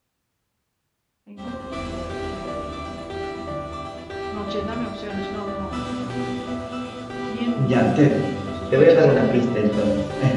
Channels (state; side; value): identical; both; correlation 1.00